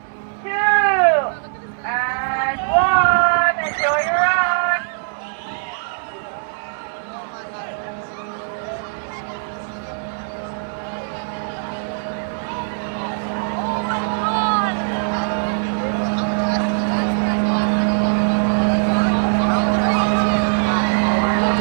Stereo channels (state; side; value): silent; left; digital silence